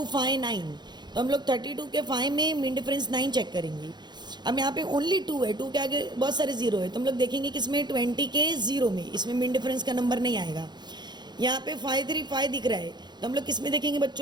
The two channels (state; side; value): late; left; 0.21 ms